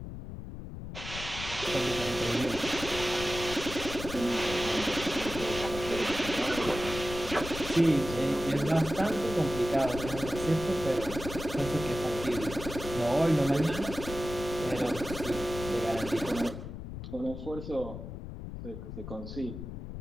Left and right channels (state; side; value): noise; left; rumble, 9 dB below the sound